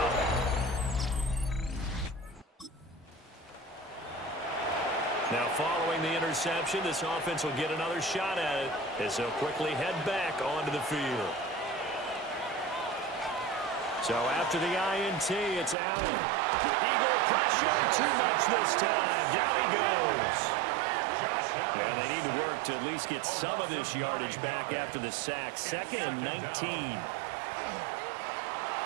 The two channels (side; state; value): left; drops out; at 15.8 s